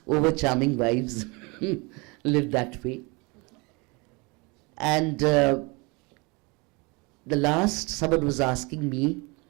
over-charming wives, live that way. And the last, someone was asking me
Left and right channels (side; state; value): left; quieter; 28.0 dB